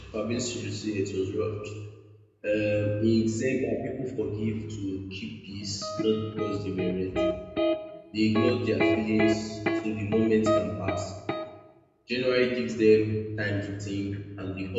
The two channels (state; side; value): identical; both; correlation 1.00